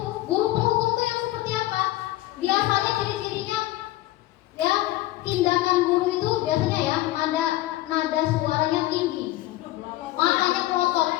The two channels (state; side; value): quieter; right; 16.4 dB